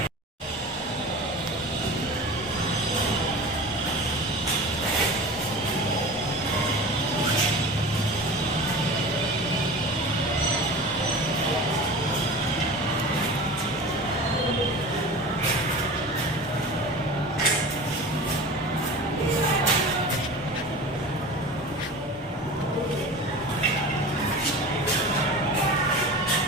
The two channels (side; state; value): both; normal; correlation 0.34